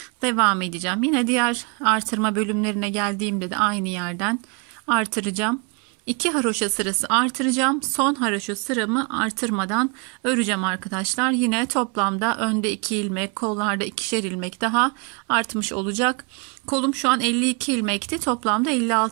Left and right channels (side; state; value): left; quieter; 33.8 dB